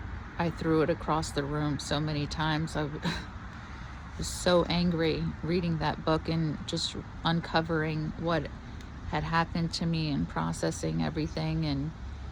threw it across the room so many times. I was so angry reading that book and just uncovering what had happened to me and processing everything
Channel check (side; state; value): both; identical; correlation 1.00